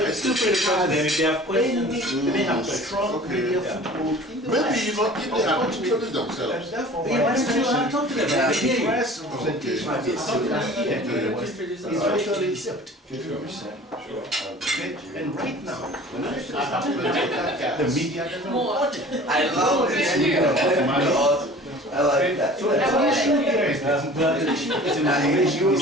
still pretty confident if they have questions. They have strong media foothold in the Maybe, West. you know, if they have introduced And themselves. therefore, Yeah, that's true. I'm talking about the it. Yeah. press representation of the African here in the West is virtually zipped. Okay? And right now, when I have the media doesn't report it. I love this. I like that. So the issue here is this. The issue is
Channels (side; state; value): both; normal; correlation 0.44